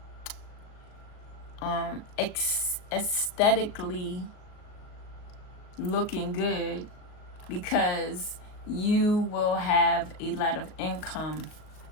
aesthetically looking good, because you will have a lot of income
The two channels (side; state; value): right; late; 38 ms